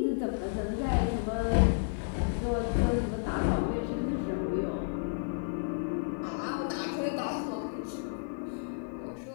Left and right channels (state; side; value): silent; right; digital silence